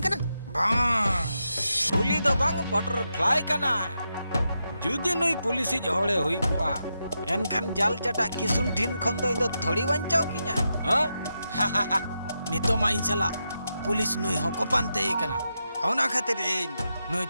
करना पुली दो बांग बटरफ्लाई कना जुदी नुई पुलिस हड़े हुई कुआ एनखान जाल चटा किसुन ठिन खन दो इंदो थोड़ी बंचाओ किना हां नितो मा इन सला पुलिस नुई हको पानते कना होना खातिर नुई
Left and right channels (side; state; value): both; inverted; correlation -0.86